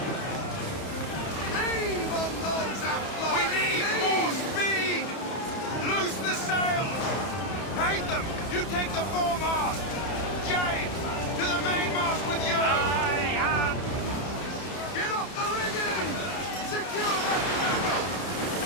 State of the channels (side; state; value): right; late; 31 ms